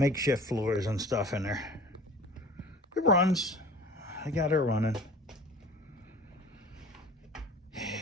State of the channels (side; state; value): both; normal; correlation 0.44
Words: floors and stuff in there. It runs. I got her running.